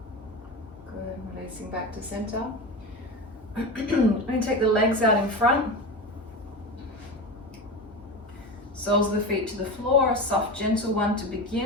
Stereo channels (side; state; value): both; normal; correlation 0.25